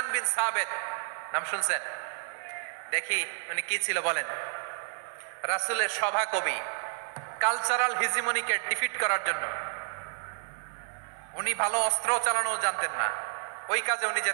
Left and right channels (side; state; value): left; silent; digital silence